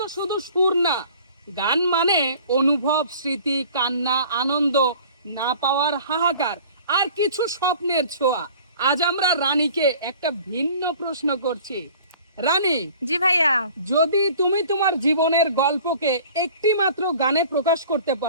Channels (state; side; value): inverted; both; correlation -0.47